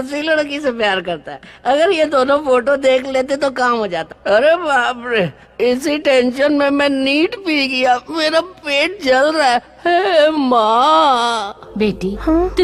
लड़की से प्यार करता है। अगर ये दोनों फोटो देख लेते तो काम हो जाता। अरे बाप रे, इसी टेंशन में मैं नीट पी गया। मेरा पेट जल रहा है। हे माँ। बेटी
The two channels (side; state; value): both; identical; correlation 1.00